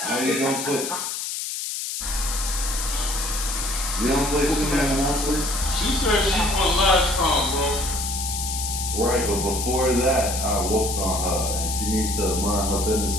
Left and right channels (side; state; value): left; noise; hiss, 4 dB below the sound